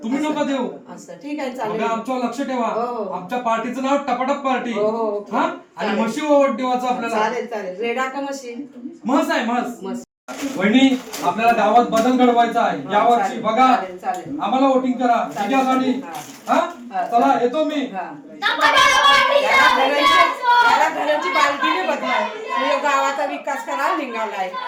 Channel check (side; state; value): both; identical; correlation 1.00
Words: तुम्ही नका देऊ. असं ठीक आहे, चालेल. बघा आमच्यावर लक्ष ठेवा. हो. आमच्या पार्टीचं नाव टपाटप पार्टी. हो. हा आणि म्हशी ओवट देवाचं आपल्याला. चालेल. रेडा का मशीन? म्हस आहे म्हस. मस्त. वहिनी आपल्याला गावात बदल घडवायचा आहे या वर्षी. बघा चालेल. आम्हाला वोटिंग करा. विजयासाठी. हा चला येतो मी. टपाटप पार्टीचा विजय असो. याला घराची बालदीने बदलाय, गावाचा विकास करायला निघालाय.